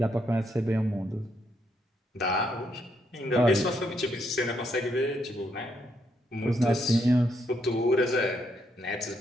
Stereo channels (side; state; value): both; normal; correlation 0.76